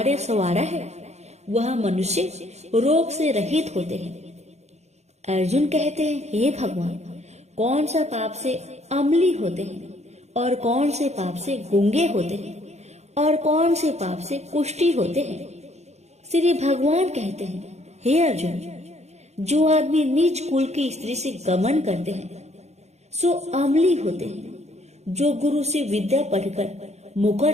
संवारा है वह मनुष्य रोग से रहित होते हैं। अर्जुन कहते हैं, हे भगवान, कौन सा पाप से अम्ली होते हैं और कौन से पाप से गूंगे होते हैं और कौन से पाप से कुष्ठी होते हैं? श्री भगवान कहते हैं, हे अर्जुन, जो आदमी नीच कुल की स्त्री से गमन करते हैं सो अम्ली होते हैं। जो गुरु से विद्या पढ़कर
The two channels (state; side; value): late; left; 0.32 ms